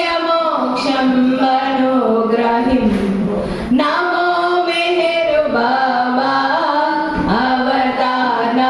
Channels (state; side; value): identical; both; correlation 1.00